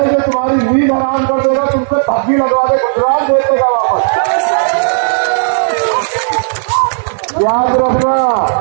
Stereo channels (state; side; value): silent; left; digital silence